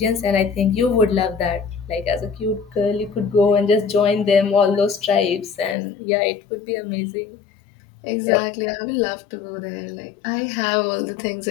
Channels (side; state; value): right; drops out; at 5.8 s